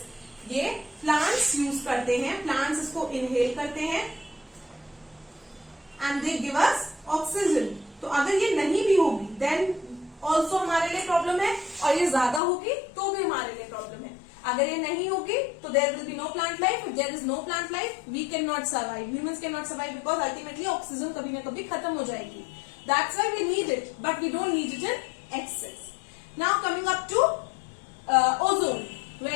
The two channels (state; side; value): drops out; right; at 12.4 s